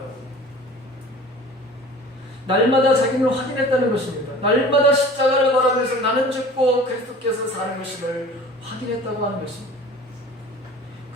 날마다 자기를 확인했다는 것입니다. 날마다 십자가를 바라보면서 나는 죽고 그리스도께서 사는 것임을 확인했다고 하는 것입니다.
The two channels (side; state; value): both; normal; correlation 0.43